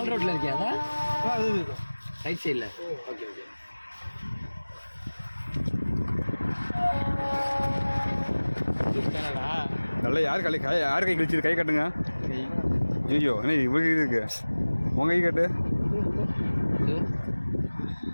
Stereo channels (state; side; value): inverted; both; correlation -1.00